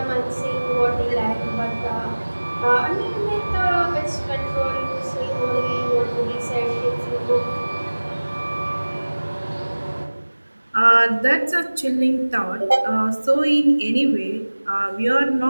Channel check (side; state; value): both; inverted; correlation -1.00